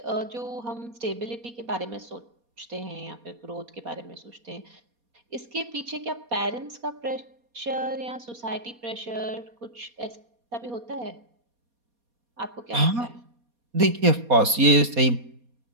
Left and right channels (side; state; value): left; late; 4.2 ms